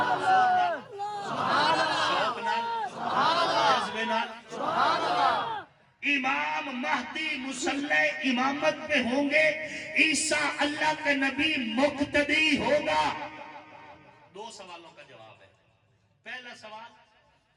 شوق نال، جذبے نال، امام مہدی مصلی امامت پہ ہوں گے، عیسیٰ اللہ کا نبی مقتدی ہوگا۔ دو سوالوں کا جواب ہے۔ پہلا سوال،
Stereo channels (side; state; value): both; identical; correlation 1.00